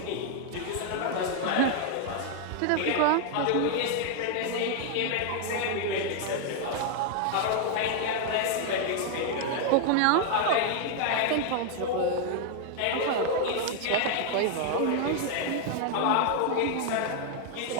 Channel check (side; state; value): both; different; correlation 0.00